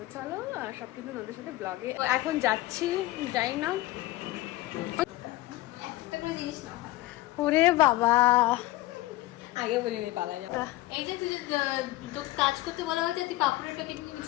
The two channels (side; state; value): right; quieter; 17.6 dB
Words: চলো সব কিন্তু ওদের সাথে ব্লগে এখন যাচ্ছি, যাই না। ওরে বাবা, আগে বলিনি পালা যাবে। এই যে তুই তো কাজ করতে বলা হয়েছে, তুই পাপড়ের প্যাকেট নিয়ে